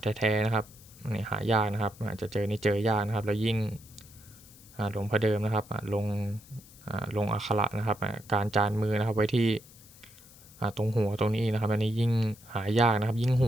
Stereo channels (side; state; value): left; noise; hiss, 22 dB below the sound